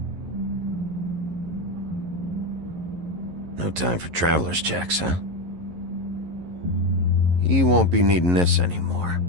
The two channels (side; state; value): left; late; 11 ms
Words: No time for traveler's checks, huh? He won't be needing this anymore.